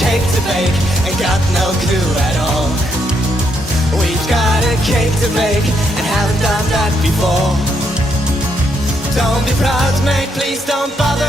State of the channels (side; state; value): both; normal; correlation 0.76